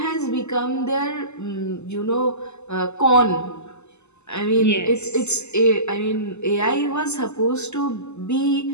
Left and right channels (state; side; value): late; right; 0.82 ms